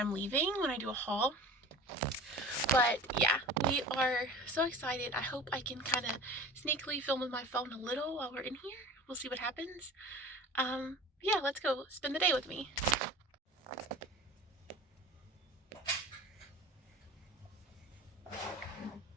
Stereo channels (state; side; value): normal; both; correlation 0.38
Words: leaving, when I do a haul. But yeah, we are so excited. I hope I can kind of sneakily film with my phone a little while we're in here. We'll see what happens. Yeah, let's go spend the day with me.